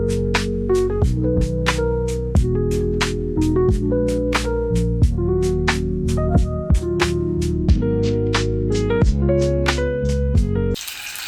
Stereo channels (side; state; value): both; identical; correlation 1.00